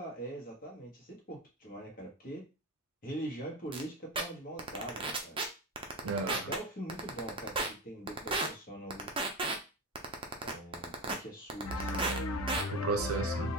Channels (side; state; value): both; normal; correlation 0.21